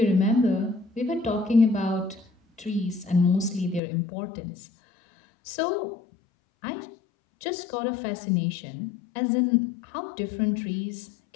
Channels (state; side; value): drops out; right; at 3.8 s